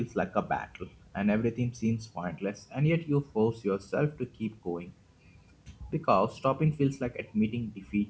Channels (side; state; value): both; identical; correlation 1.00